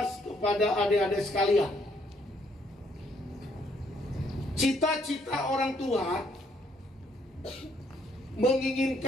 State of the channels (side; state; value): both; normal; correlation 0.69